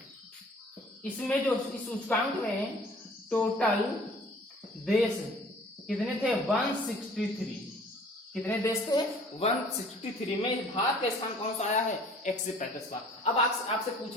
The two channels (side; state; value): both; normal; correlation 0.52